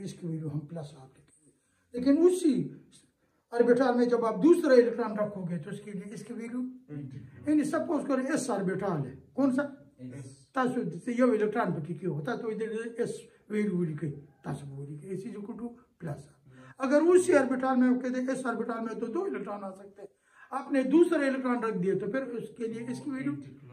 इसकी वैल्यू हम प्लस आप लिखेंगे, लेकिन उसी ऑर्बिटल में जब आप दूसरा इलेक्ट्रॉन रखोगे तो उसके लिए इसकी वैल्यू, यानी सपोज करो एस ऑर्बिटल है, कौन सा तासु ये इलेक्ट्रॉन पे क्यों होता तो इधर एस वैल्यू लिखे तासु वो लिखे इज इक्वल टू प्लस। अगर उसी ऑर्बिटल में कहते एस ऑर्बिटल में तो 2 इलेक्ट्रॉन आ सकते हैं, आपने दूसरा इलेक्ट्रॉन रख दिया तो फिर उसके लिए इसकी वैल्यू,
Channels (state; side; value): identical; both; correlation 1.00